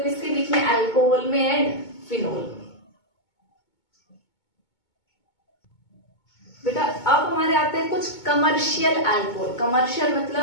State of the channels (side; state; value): right; late; 2.2 ms